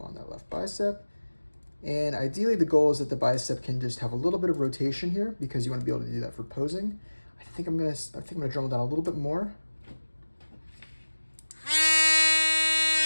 that left bicep. And ideally the goal is that the bicep can just have a little bit of rotation here because you want to be able to do that for posing. I think I'm gonna dremel down a little bit more.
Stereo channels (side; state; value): both; inverted; correlation -1.00